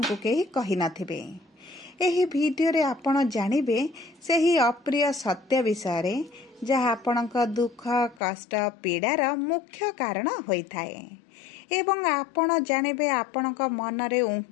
को केही कहि नथिबे। एही वीडियो रे आपण जानिबे सेही अप्रिय सत्य विषय रे जहाँ आपणक दुख कष्ट पीड़ार मुख्य कारण होइथाए एवं आपण जानिबे आपणक मनरे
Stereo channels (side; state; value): right; drops out; at 8.2 s